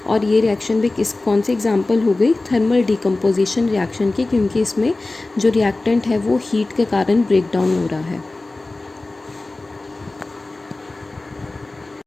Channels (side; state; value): right; quieter; 3.1 dB